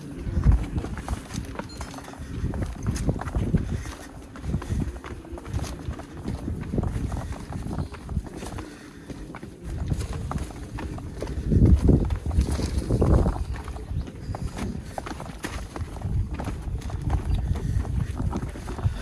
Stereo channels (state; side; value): identical; both; correlation 1.00